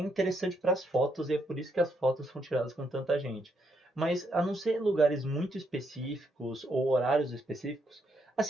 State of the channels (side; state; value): both; normal; correlation 0.76